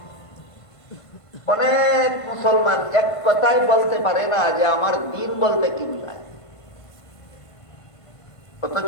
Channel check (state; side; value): late; right; 1.5 ms